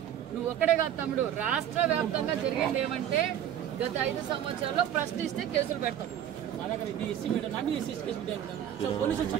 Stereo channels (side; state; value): left; quieter; 10.5 dB